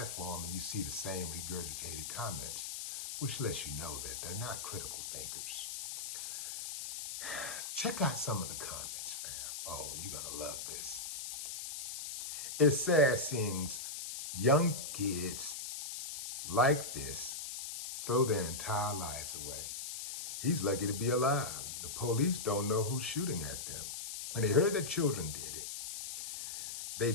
and you see the same regurgitated comments, which lets you know that they're not critical thinkers. Check out some of the comments, fam. Oh, you're gonna love this. It's sad seeing young kids like this throw their entire lives away. He's lucky to be alive. The police don't know who's shooting at them. When they heard that children did it, they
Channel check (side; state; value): left; noise; hiss, 6 dB below the sound